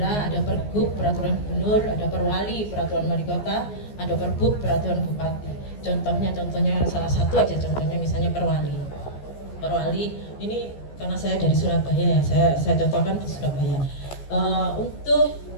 ada Pergub, peraturan gubernur, ada Perwali, peraturan wali kota, ada Pergub, peraturan bupati. Contohnya salah satu aja contohnya misalnya Perwali. Perwali ini karena saya dari Surabaya ya, saya contohkan di Surabaya. Untuk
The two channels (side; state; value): right; late; 14 ms